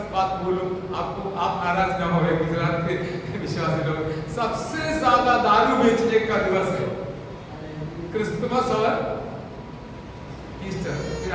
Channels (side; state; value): both; identical; correlation 1.00